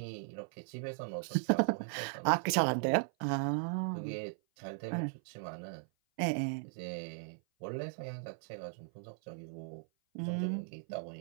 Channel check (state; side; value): silent; left; 53 dB below the other